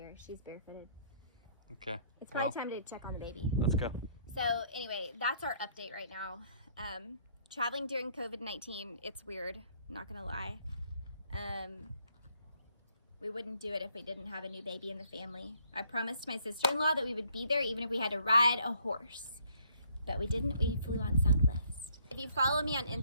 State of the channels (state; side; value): inverted; both; correlation -0.65